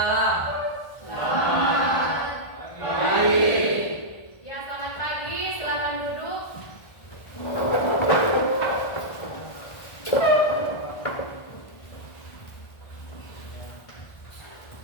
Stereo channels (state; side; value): late; right; 1.4 ms